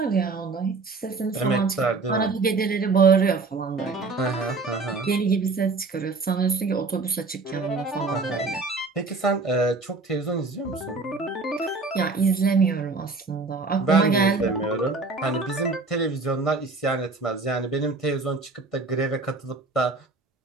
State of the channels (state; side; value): quieter; left; 3.8 dB